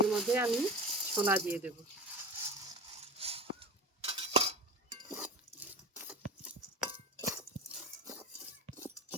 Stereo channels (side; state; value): both; normal; correlation 0.30